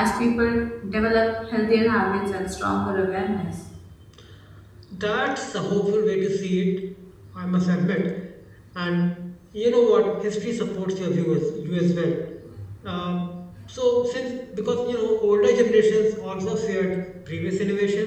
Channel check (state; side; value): identical; both; correlation 1.00